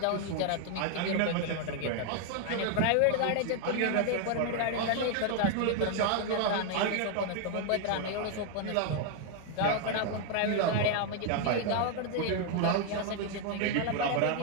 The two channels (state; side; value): different; both; correlation 0.00